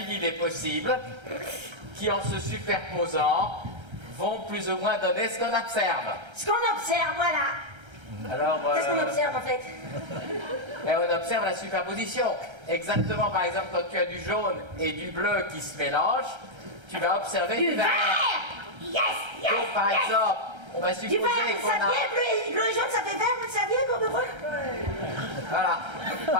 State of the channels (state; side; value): late; left; 1.3 ms